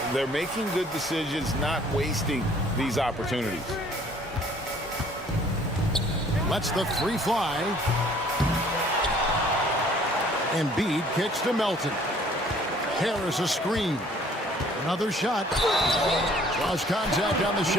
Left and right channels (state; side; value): normal; both; correlation 0.57